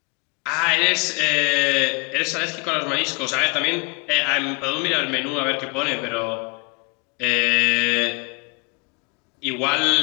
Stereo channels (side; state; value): right; quieter; 30.9 dB